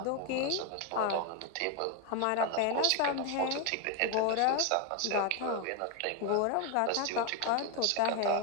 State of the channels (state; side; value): different; both; correlation 0.01